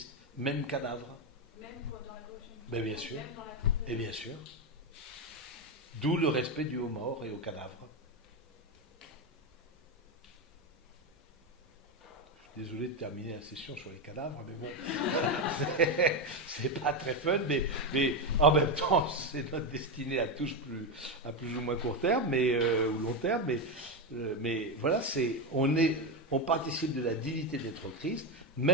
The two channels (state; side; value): normal; both; correlation 0.10